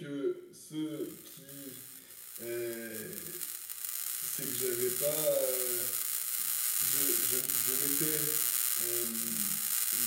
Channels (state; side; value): identical; both; correlation 1.00